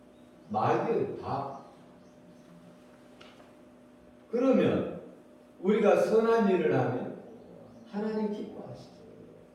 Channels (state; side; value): identical; both; correlation 1.00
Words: 마귀의 밥. 그러면 우리가 선한 일을 하면 하나님 기뻐하시죠.